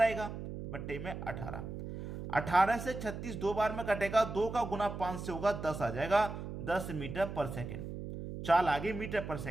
आएगा, बट्टे में 18। 18 से 36 दो बार में कटेगा, 2 का गुना 5 से होगा, 10 आ जाएगा। 10 मीटर पर सेकेंड। चाल आ गई मीटर पर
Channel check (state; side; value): noise; right; hum, 8 dB below the sound